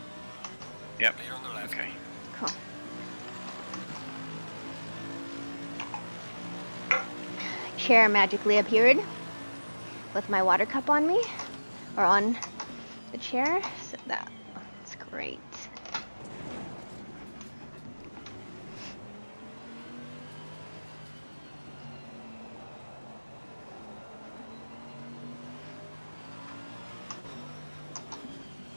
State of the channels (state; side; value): inverted; both; correlation -1.00